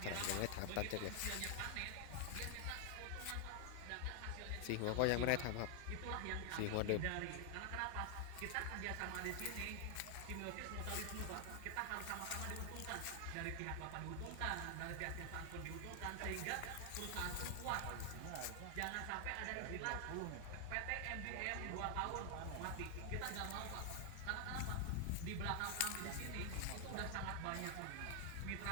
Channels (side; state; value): both; different; correlation 0.00